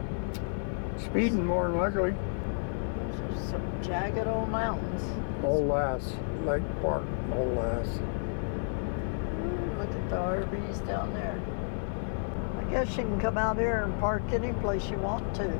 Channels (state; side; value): silent; right; 57 dB below the other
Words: Speeding more than likely. Those are some jagged old mountains. Old Lass, Lake Park, Old Lass. Look at the RVs down there. I guess you can come out here and park any place you want to.